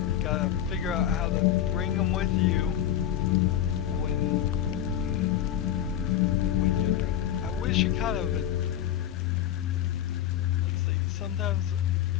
gotta figure out how to bring them with you when you're doing. I wish you kind of. Let's see. Sometimes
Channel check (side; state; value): right; quieter; 10.9 dB